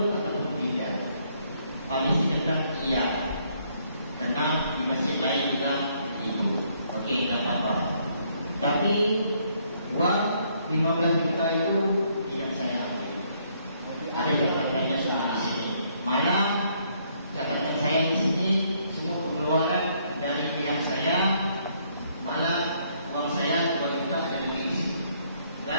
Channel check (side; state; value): both; inverted; correlation -0.69